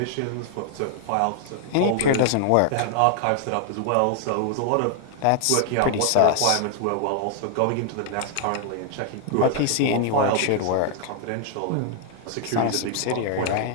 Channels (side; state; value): both; different; correlation 0.00